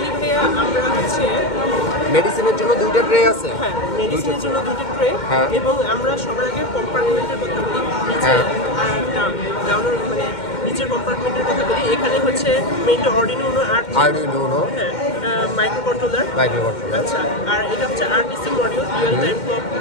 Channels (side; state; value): right; late; 2.1 ms